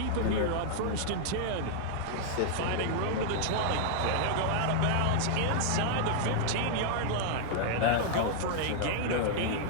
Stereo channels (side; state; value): both; different; correlation -0.01